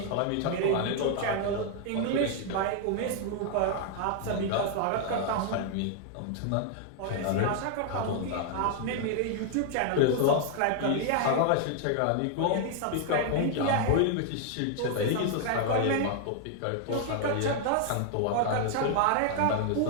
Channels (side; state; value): both; different; correlation 0.00